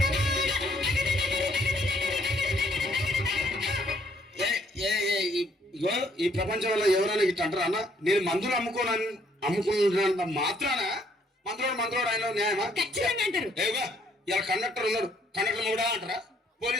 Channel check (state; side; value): normal; both; correlation 0.66